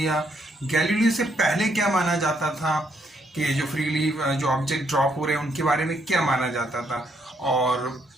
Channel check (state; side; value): normal; both; correlation 0.73